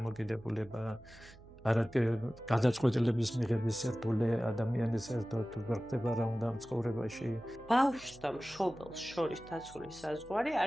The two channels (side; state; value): right; noise; hum, 21 dB below the sound